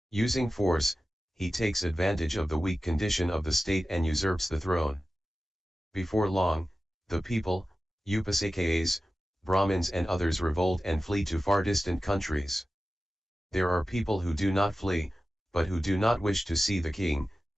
using force, he takes advantage of the weak condition of the state and usurps the throne. Before long, the people, Upasakas, Brahmins and others revolt and flee to far distant countries. There are people who do not flee, but who do not wish to see the king,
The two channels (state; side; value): normal; both; correlation 0.94